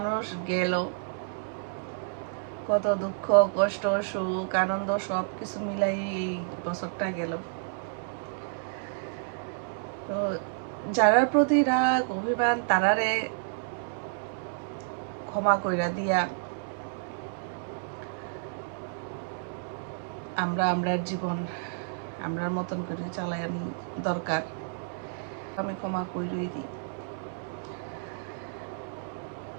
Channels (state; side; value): silent; left; digital silence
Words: গেল, কত দুঃখ কষ্ট সুখ আনন্দ সব কিছু মিলাই এই বছরটা গেল। তো যারার প্রতি রাগ অভিমান তারারে ক্ষমা কইরা দিয়া আমরা আমরার জীবন আমরার মতন করে চালাই দরকার, আমি ক্ষমা কইরই দিই।